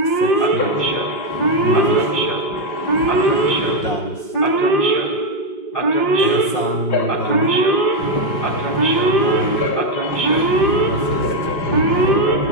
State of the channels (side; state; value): right; late; 5.6 ms